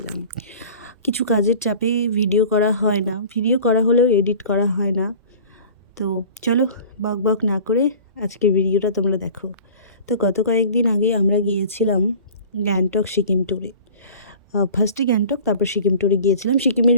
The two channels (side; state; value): both; inverted; correlation -0.43